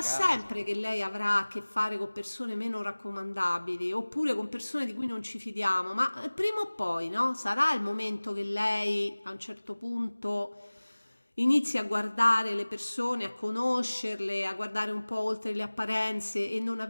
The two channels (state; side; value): inverted; both; correlation -1.00